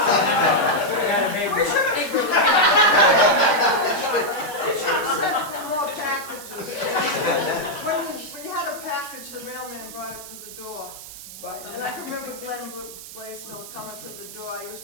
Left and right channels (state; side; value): noise; right; hiss, 14 dB below the sound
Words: We should have sent for more packages. When you had a package, the mailman brought it